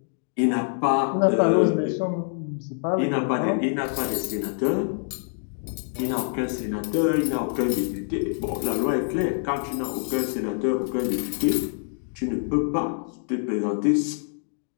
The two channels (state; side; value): silent; right; digital silence